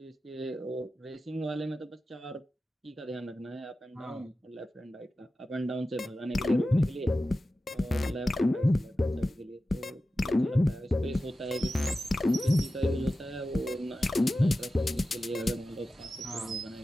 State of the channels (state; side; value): normal; both; correlation 0.94